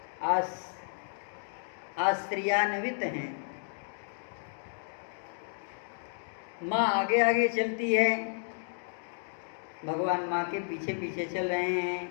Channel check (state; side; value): silent; right; digital silence